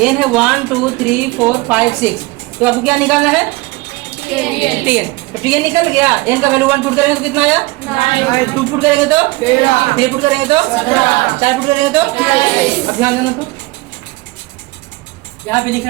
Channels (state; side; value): quieter; left; 22.4 dB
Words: n है 1 2 3 4 5 6, तो आपको क्या निकालना है? Tn। तो Tn निकल गया, n का वैल्यू 1 पुट करेंगे तो कितना आया? 2 पुट करेंगे तो 3 पुट करेंगे तो 4 पुट करेंगे तो। अब ध्यान देना, तो यहाँ पे लिख